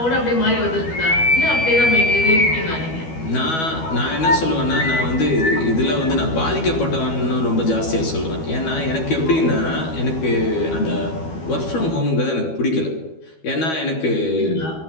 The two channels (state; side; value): late; right; 12 ms